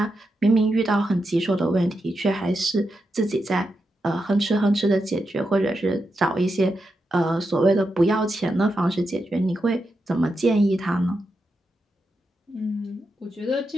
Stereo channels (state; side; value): normal; both; correlation 0.86